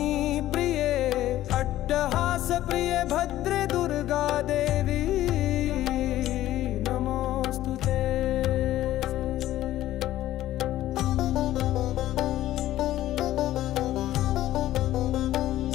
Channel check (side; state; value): right; quieter; 14.1 dB